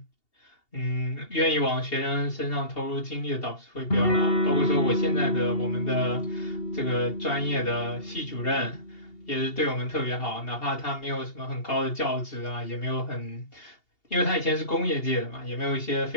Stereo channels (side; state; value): right; late; 2.8 ms